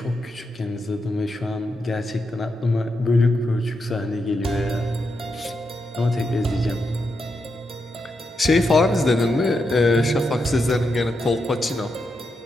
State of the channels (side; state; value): both; normal; correlation 0.84